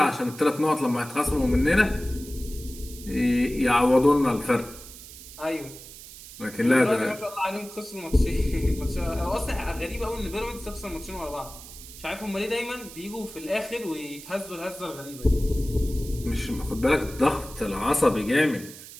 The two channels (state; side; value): noise; right; hiss, 16 dB below the sound